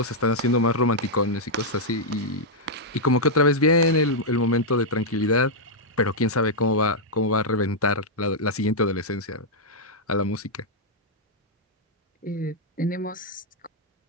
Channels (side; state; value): both; normal; correlation -0.05